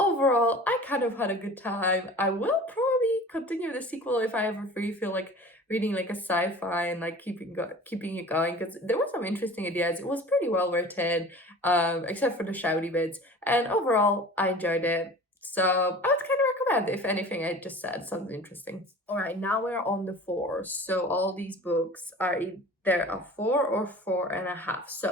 I kind of had a good time. I will probably continue the sequel if I ever feel like reading like a sci-fi and like keeping it going, because there were some interesting ideas. It was pretty well written, except for the shouty bits. And overall, I enjoyed it. So I would kind of recommend, if anything I just said sounds interesting. All right, now we're on the 4s. So all these books are either a 4 or 4.5.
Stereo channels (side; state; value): both; normal; correlation 0.41